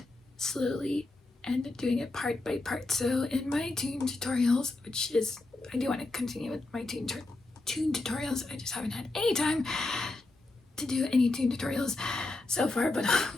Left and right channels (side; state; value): right; quieter; 3.1 dB